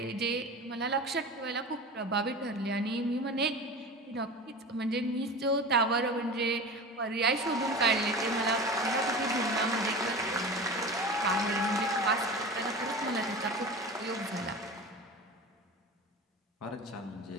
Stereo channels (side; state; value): both; normal; correlation 0.32